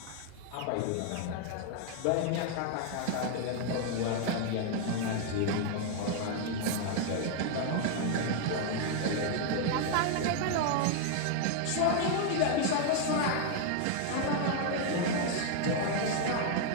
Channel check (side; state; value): both; different; correlation 0.00